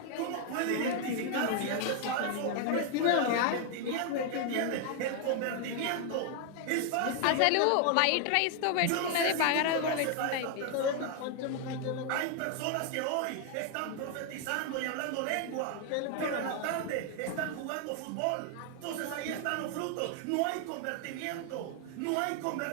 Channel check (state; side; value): different; both; correlation 0.00